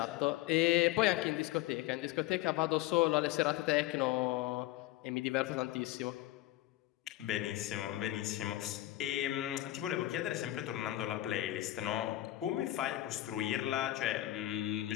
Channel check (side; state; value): right; quieter; 15.7 dB